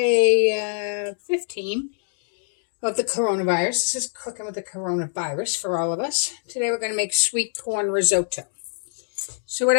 15 of the coronavirus. This is cooking with the coronavirus for all of us. Today we're going to make sweet corn risotto. So what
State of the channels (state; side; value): silent; right; digital silence